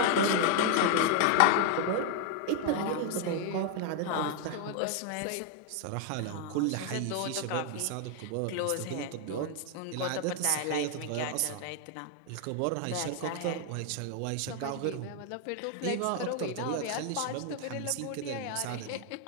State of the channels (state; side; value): different; both; correlation 0.00